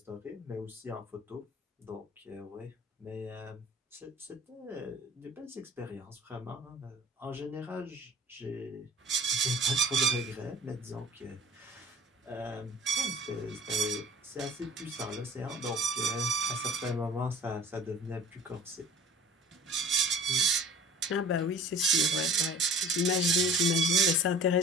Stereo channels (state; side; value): normal; both; correlation 0.44